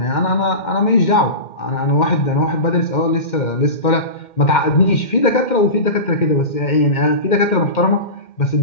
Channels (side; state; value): right; late; 2.1 ms